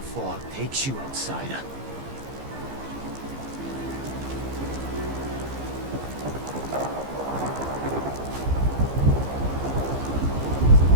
fog takes you, outsider.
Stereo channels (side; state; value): left; late; 15 ms